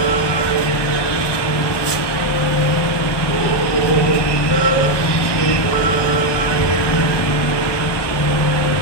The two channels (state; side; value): late; right; 1.1 ms